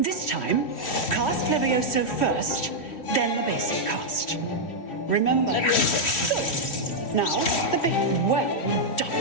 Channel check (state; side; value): late; right; 3.1 ms